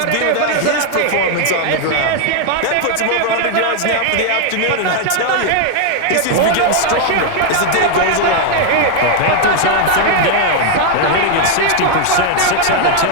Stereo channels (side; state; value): both; different; correlation 0.00